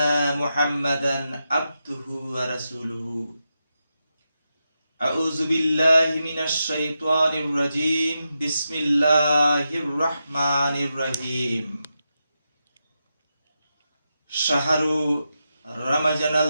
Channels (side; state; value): both; inverted; correlation -0.88